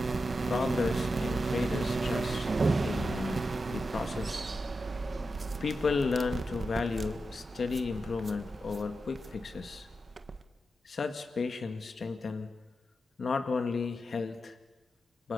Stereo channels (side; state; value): both; normal; correlation 0.89